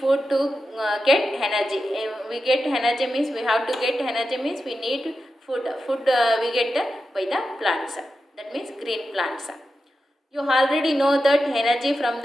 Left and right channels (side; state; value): both; normal; correlation 0.90